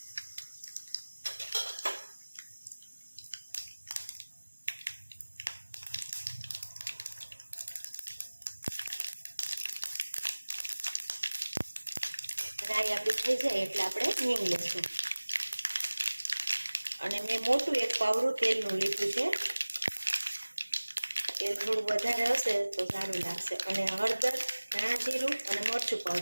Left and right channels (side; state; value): both; inverted; correlation -1.00